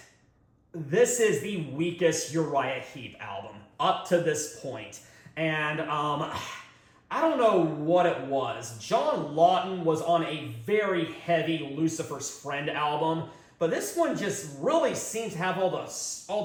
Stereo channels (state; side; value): identical; both; correlation 1.00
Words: this is the weakest Uriah Heep album. Up to this point. And I don't know what it was. John Lawton was on a very heavy Lucifer's Friend album, but this one just really seems to have the